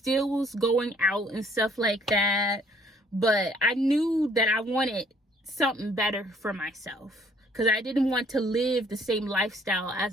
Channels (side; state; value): both; normal; correlation 0.61